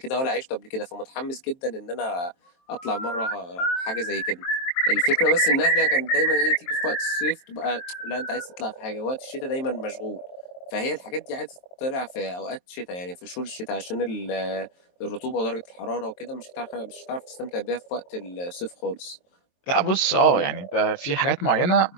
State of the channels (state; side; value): late; right; 23 ms